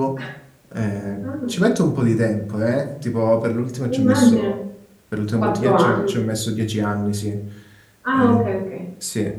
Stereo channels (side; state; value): both; identical; correlation 1.00